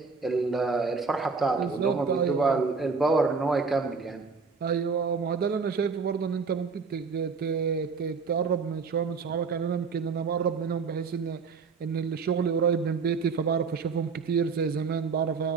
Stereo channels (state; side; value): quieter; left; 5.0 dB